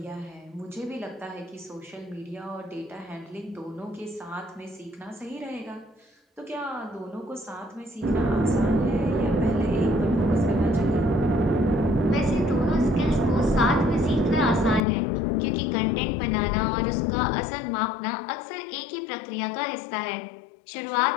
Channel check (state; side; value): drops out; right; at 14.8 s